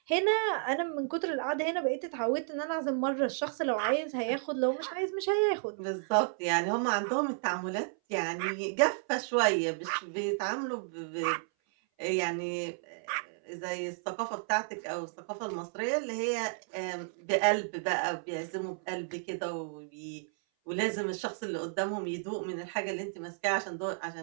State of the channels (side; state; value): left; silent; 56 dB below the other